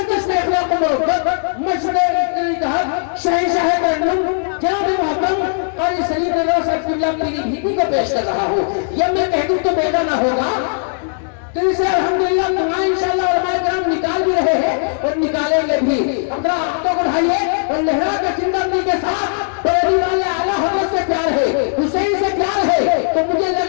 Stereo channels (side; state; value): right; silent; digital silence